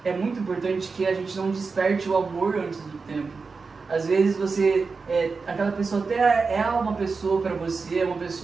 é muito importante que a gente não desperte o amor antes do tempo. Às vezes aquela pessoa até é uma pessoa para você, é uma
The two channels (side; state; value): left; quieter; 4.6 dB